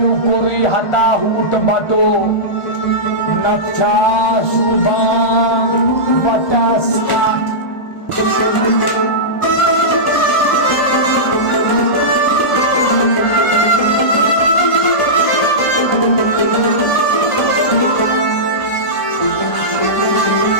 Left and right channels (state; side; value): late; right; 1.5 ms